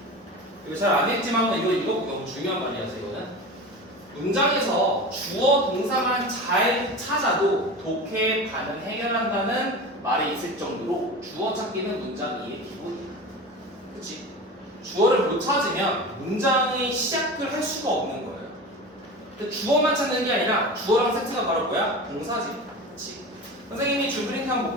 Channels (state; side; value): normal; both; correlation 0.31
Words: 이거 잘 안 했지만 이거 너무 중요한 말이라서 이거는 문장에서 주어 동사만 잘 찾아도 독해 반응 해결한다는 말이 있을 정도로 주어 찾기는 문장 이해 기본이야. 그치? 주어를 못 찾으면 문장의 시작을 할 수가 없는 거예요. 근데 주어만 찾는 게 아니라 주어랑 세트가 바로 뭐야? 동사지. 그치? 선생님이 줄 프린트 한번